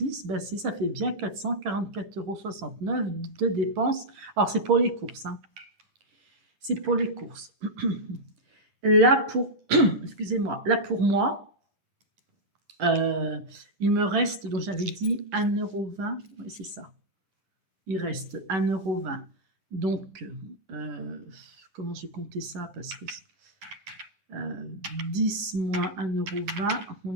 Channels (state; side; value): late; left; 11 ms